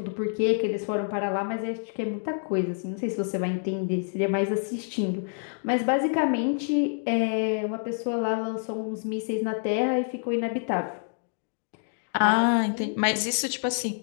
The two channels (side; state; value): right; silent; digital silence